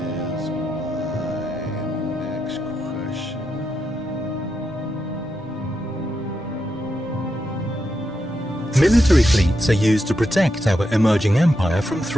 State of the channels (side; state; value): both; normal; correlation 0.84